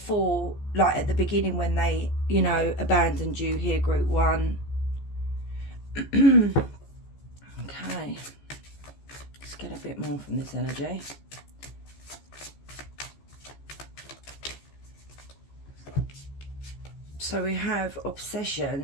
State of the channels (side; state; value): right; late; 14 ms